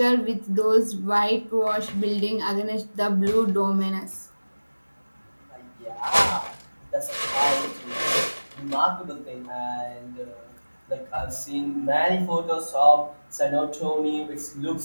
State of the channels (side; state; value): both; inverted; correlation -1.00